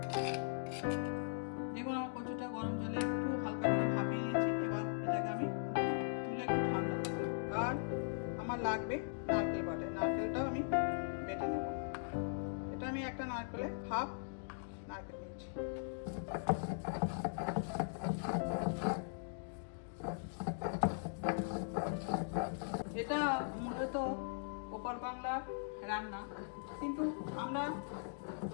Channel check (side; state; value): right; silent; digital silence